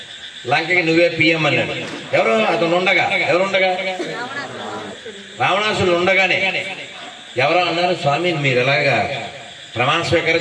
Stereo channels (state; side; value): identical; both; correlation 1.00